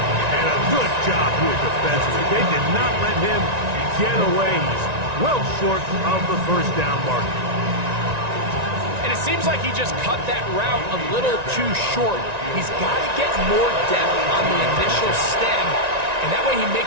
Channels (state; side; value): late; left; 1.9 ms